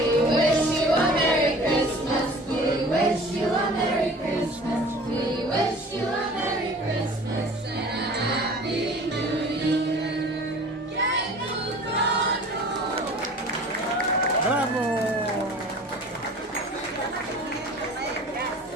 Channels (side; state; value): both; normal; correlation 0.45